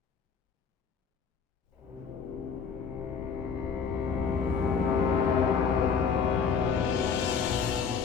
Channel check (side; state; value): right; quieter; 6.1 dB